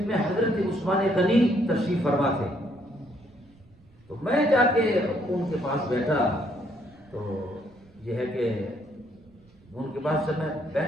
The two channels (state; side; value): noise; right; rumble, 28 dB below the sound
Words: میں حضرت عثمان غنی تشریف فرما تھے، تو میں جا کے ان کے پاس بیٹھا، تو یہ ہے کہ ان کے پاس جب میں